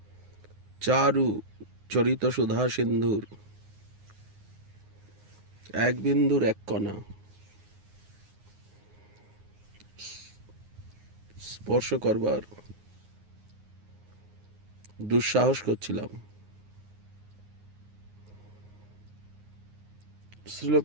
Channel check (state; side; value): late; left; 9.6 ms